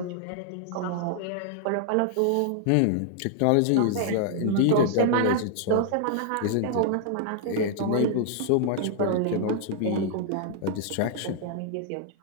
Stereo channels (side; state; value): both; different; correlation 0.00